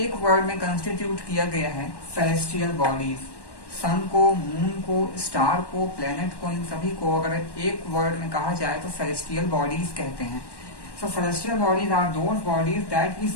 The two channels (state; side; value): late; right; 1.1 ms